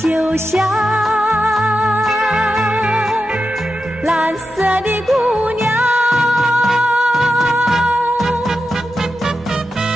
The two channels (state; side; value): normal; both; correlation 0.90